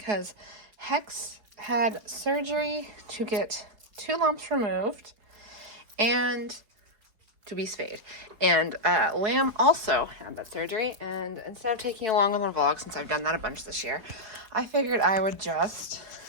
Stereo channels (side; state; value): left; late; 4.7 ms